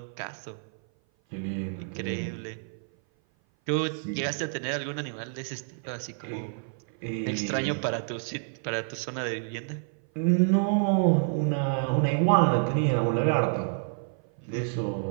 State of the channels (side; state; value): left; silent; 56 dB below the other